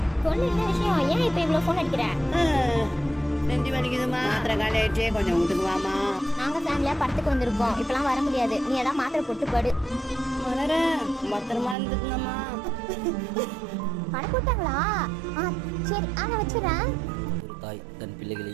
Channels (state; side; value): drops out; left; at 11.8 s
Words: சொல்லு என்ன விஷயம், ஏன் இப்போ இவ்வளோ ஃபோன் அடிக்கிற? நெஞ்சு வலிக்குதுமா, மாத்திரை காலி ஆயிடுச்சு, கொஞ்சம் வீட்டுக்கு வாமா. நாங்கள் ஃபேமிலியாக படத்துக்கு வந்திருக்கோம், இப்போலாம் வர முடியாது. நீ ஏதாவது மாத்திரை போட்டு படு. மலரே, பத்திரமா இருந்துக்குங்கம்மா. படம் போட்டாங்களா? சரி, நான் வச்சுறேன். ஒரு தாய் தன் பிள்ளைகளை